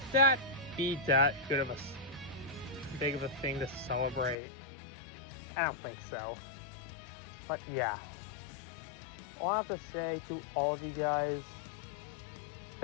that be that good of big of a thing to celebrate? I don't think so. But yeah, all I have to say to all of you guys,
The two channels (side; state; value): right; drops out; at 4.4 s